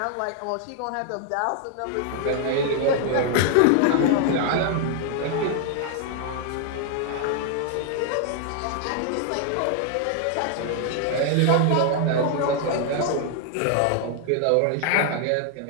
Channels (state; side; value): different; both; correlation 0.00